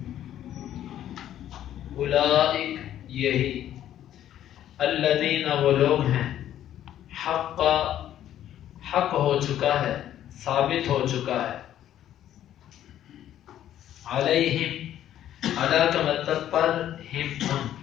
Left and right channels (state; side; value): quieter; right; 11.5 dB